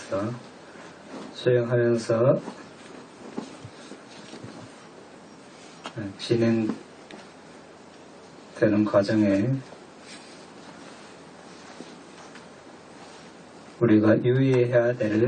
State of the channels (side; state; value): both; identical; correlation 1.00